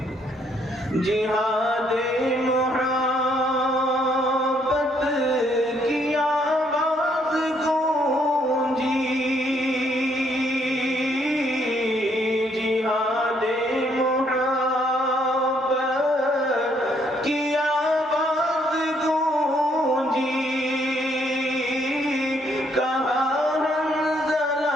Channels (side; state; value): both; normal; correlation 0.69